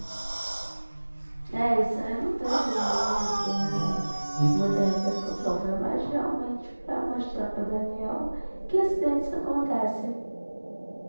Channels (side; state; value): both; inverted; correlation -1.00